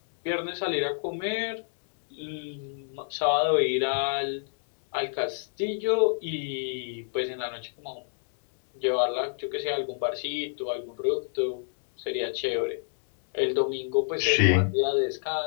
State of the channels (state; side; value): silent; right; digital silence